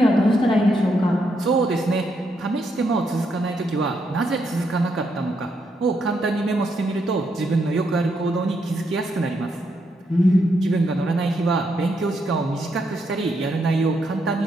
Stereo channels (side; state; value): both; normal; correlation 0.78